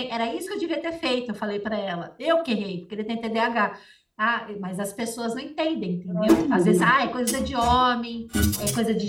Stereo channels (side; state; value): both; identical; correlation 1.00